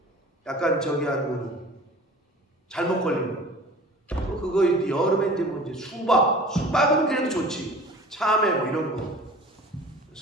약간 저기 한 무는 잘못 걸리면 그거 이제 여름에 이제 뭐 이제 수박은 그래도 좋지. 참외 뭐 이런 거.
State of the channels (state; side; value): normal; both; correlation 0.42